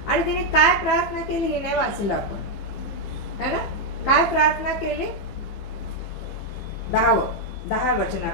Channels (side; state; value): right; late; 15 ms